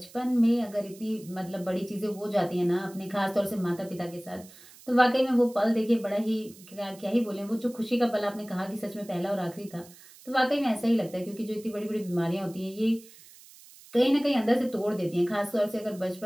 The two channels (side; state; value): right; noise; hiss, 22 dB below the sound